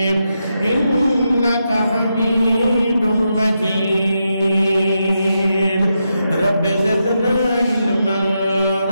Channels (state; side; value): inverted; both; correlation -0.85